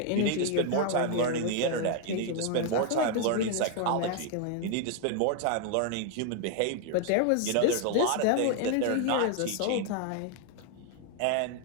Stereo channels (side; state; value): both; different; correlation 0.00